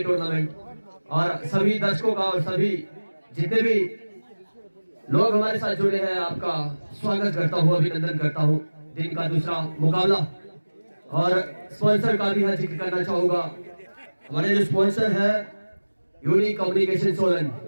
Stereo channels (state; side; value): inverted; both; correlation -1.00